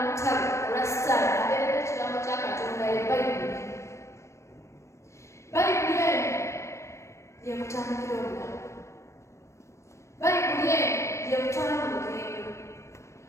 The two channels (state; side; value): late; right; 0.14 ms